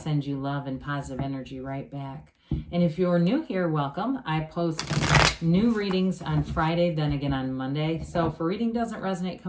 you love and positive energy right back. And if you're new here, welcome. I post new readings on Friday, then again on Monday. So if a reading doesn't resonate,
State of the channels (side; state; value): both; identical; correlation 1.00